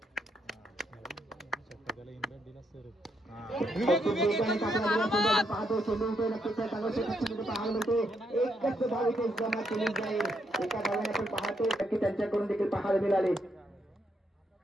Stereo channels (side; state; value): both; normal; correlation 0.77